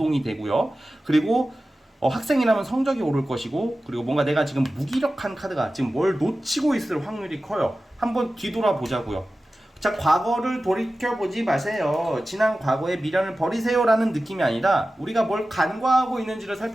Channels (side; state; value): both; normal; correlation 0.95